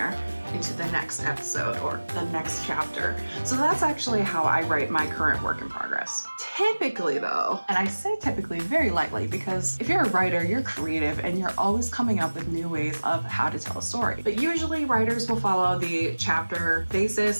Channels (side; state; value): both; inverted; correlation -1.00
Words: into the next episode or the next chapter. So that's actually how I write my current work in progress. Typically though, and I say typically very lightly because if you're a writer, you're creative and you're always coming up with new ways of how to tell a story. But usually writers will follow the chapter